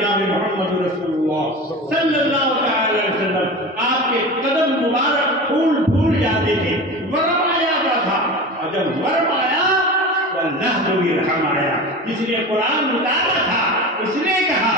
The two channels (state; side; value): normal; both; correlation 0.30